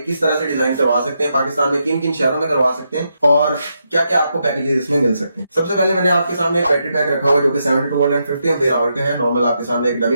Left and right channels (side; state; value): both; inverted; correlation -0.82